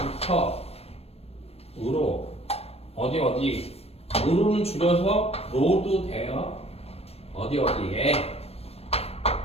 으로 어디 으로는 줄여서 로도 돼요. 어디에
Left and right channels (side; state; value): right; late; 0.29 ms